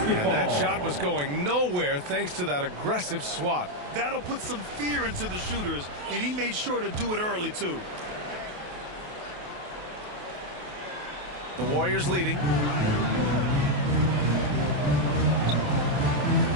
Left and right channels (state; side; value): late; left; 28 ms